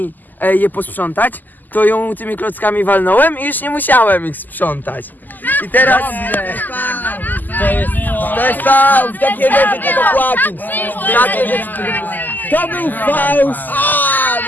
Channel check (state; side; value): late; right; 0.085 ms